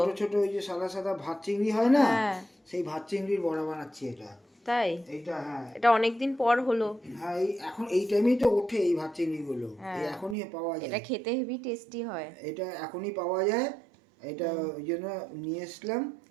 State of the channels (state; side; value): drops out; left; at 10.4 s